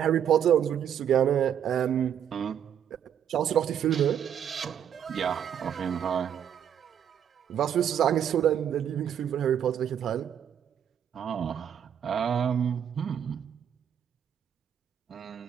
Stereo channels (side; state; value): left; quieter; 9.1 dB